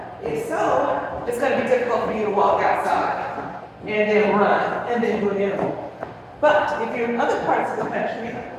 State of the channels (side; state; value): both; identical; correlation 1.00